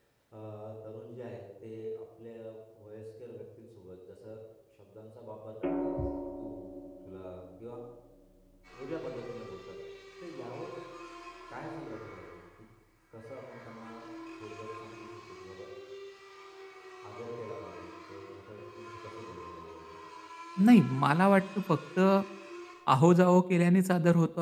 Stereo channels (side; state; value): both; identical; correlation 1.00